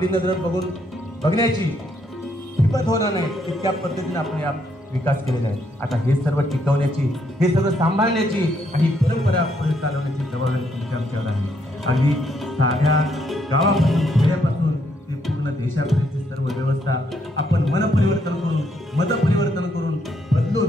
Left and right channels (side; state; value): both; normal; correlation 0.73